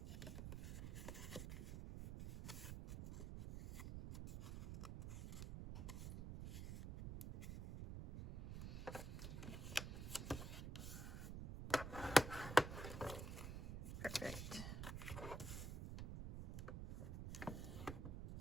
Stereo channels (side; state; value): right; noise; rumble, 6 dB below the sound